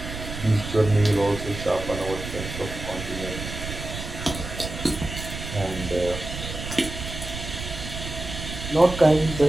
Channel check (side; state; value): right; noise; rumble, 8 dB below the sound